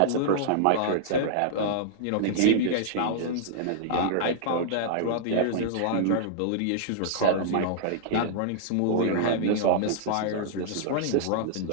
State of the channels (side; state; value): both; different; correlation -0.02